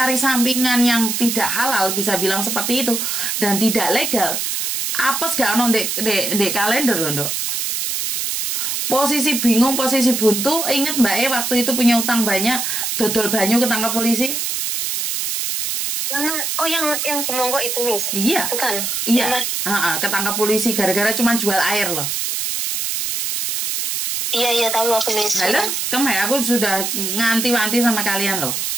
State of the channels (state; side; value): noise; right; hiss, 1 dB below the sound